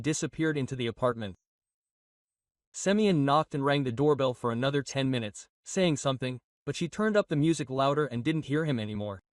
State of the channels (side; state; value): both; identical; correlation 1.00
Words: disappeared into the apartment. Semyon knocked and rang the doorbell for another 10 minutes, saying something, but she turned up the music louder and didn't hear him anymore.